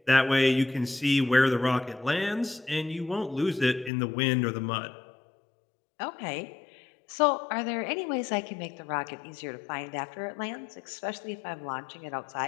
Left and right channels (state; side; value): drops out; right; at 3.9 s